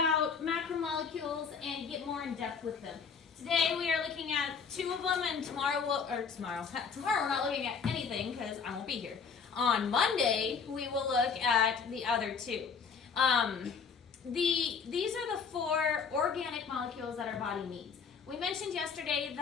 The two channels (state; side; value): quieter; right; 5.9 dB